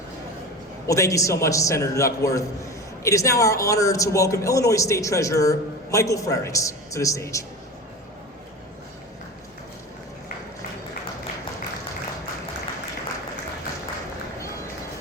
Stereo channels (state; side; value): normal; both; correlation 0.30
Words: Well, thank you so much, Senator Duckworth. It is now our honor to welcome Illinois State Treasurer Michael Frerichs to the stage.